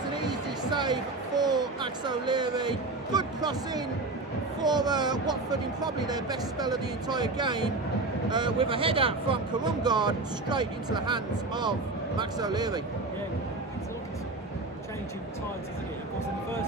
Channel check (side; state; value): left; quieter; 3.2 dB